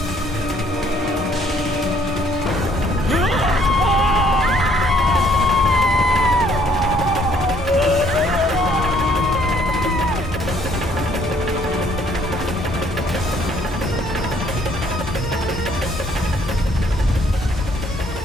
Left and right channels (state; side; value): normal; both; correlation 0.64